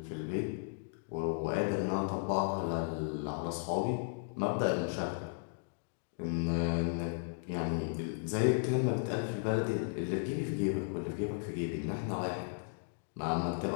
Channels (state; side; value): silent; right; digital silence